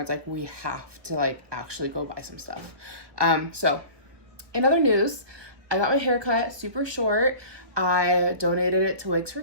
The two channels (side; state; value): left; late; 1.2 ms